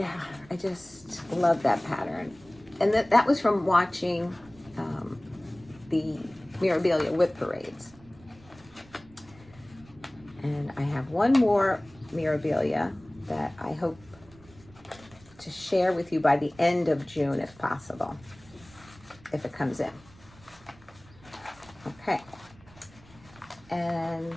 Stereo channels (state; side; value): noise; right; rumble, 24 dB below the sound